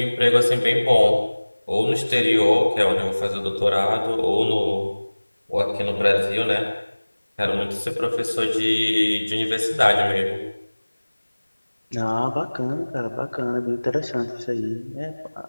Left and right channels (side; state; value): both; inverted; correlation -1.00